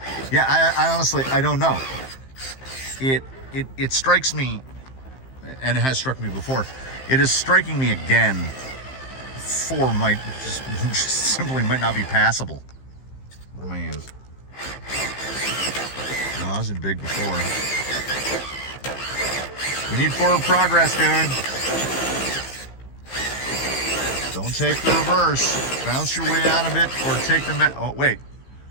Yeah, I honestly, I don't know. It strikes me, and it has struck me before. It is striking me again. 4 might just simply might not be passable. What am I in? No, I was in big before. We need forward progress, dude. Don't take the reverse. Bounce your way out of it, or take the oh, wait.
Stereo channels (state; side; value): late; right; 15 ms